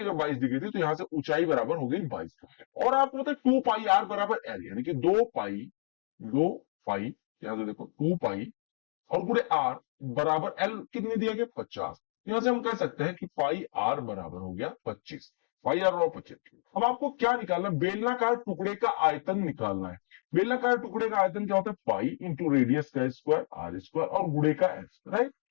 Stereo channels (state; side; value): silent; right; 58 dB below the other